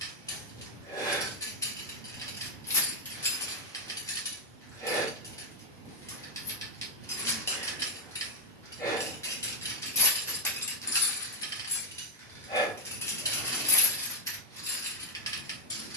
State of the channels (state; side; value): normal; both; correlation 0.01